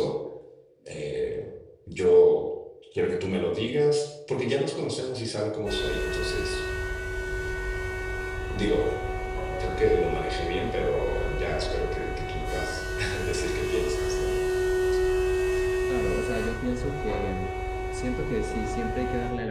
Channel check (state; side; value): identical; both; correlation 1.00